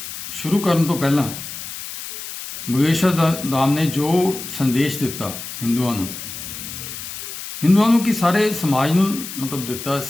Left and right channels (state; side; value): noise; left; hiss, 9 dB below the sound